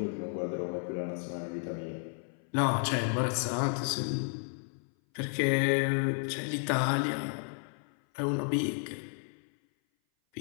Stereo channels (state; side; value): silent; right; 56 dB below the other